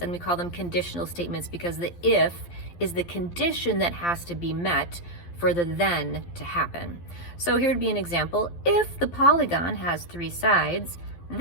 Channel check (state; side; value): late; right; 12 ms